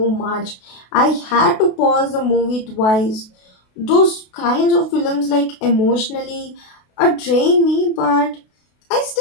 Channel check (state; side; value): late; right; 32 ms